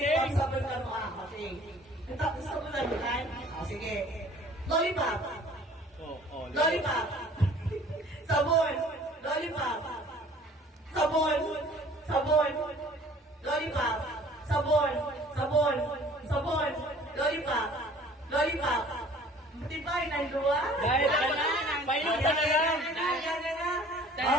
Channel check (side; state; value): both; normal; correlation 0.51